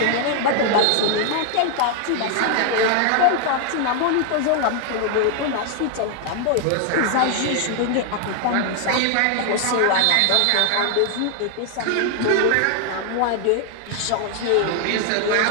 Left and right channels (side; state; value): both; different; correlation 0.00